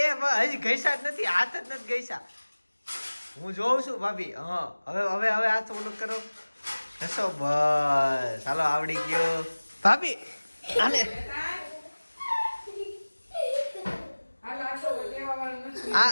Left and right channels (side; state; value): both; inverted; correlation -1.00